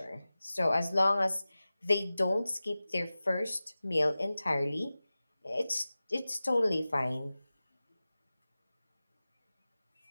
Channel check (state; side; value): inverted; both; correlation -0.96